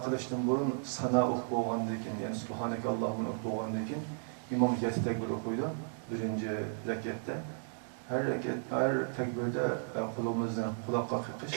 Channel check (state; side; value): silent; left; digital silence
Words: kılıştan burun sana okup olgandan keyin yani Subhaneke Allahümme okup olgandan keyin İmam 7 tekbir okuydu birinci rekatte. Her tekbirde kulağımızdan kulakka